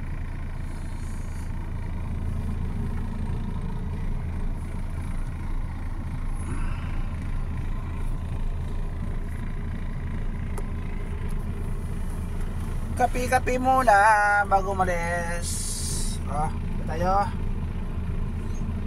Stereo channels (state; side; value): identical; both; correlation 1.00